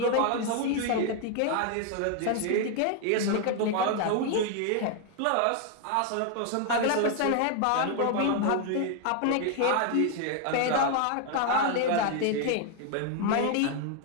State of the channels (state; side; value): different; both; correlation 0.00